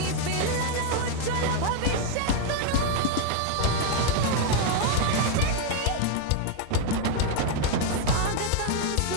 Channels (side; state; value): both; different; correlation 0.00